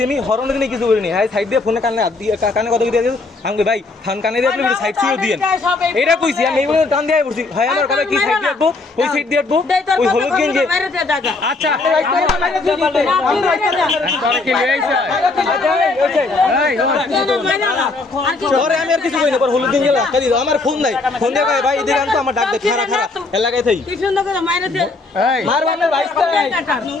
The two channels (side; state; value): right; quieter; 3.5 dB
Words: আমি হরন দিনে কিছু করিনি হ্যাঁ সাইড দিয়ে ফোনে কানে কানে কথা দিয়ে আমি ভাই ফোন কানে দিয়ে আপনি সাইড দিয়ে দিয়েন এটা কইছি আমি এইগুলো টান দিয়ে পড়ছি ভাই আমার কথা কি সাইড দিয়ে আটবো ওই সাইড দিয়ে আটবো ওই হলুদ গেঞ্জি আচ্ছা পরে আমি আর কিছু কই না পর হলুদ গেঞ্জি লাগা দিও আমার ফোন নাই ফোন দিয়ে ভাই এদিকে আনতো আমার ডাক দে খারা খারা এলাকায় থাই কি সুন্দর করে মাইরে দে মার আমার ভাই